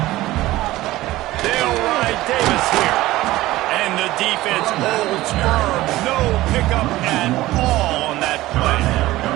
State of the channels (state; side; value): quieter; left; 17.1 dB